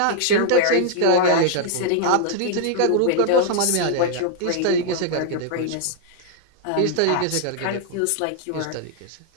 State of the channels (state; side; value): different; both; correlation 0.00